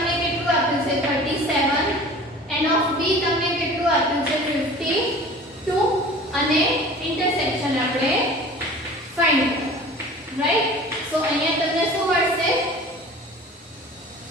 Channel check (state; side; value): normal; both; correlation 0.42